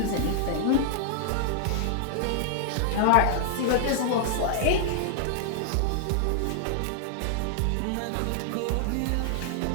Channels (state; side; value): different; both; correlation -0.01